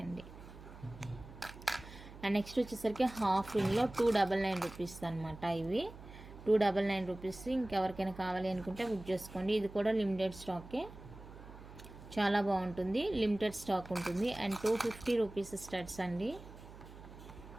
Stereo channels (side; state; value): right; noise; hum, 16 dB below the sound